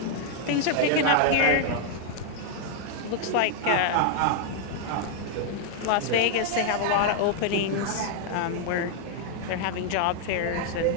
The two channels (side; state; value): both; different; correlation -0.01